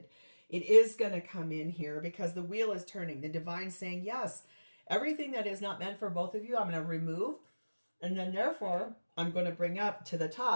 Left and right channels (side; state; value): both; inverted; correlation -1.00